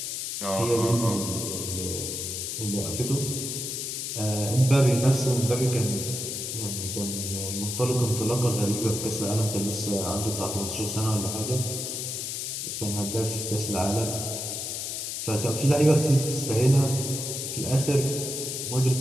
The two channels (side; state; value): left; noise; hiss, 4 dB below the sound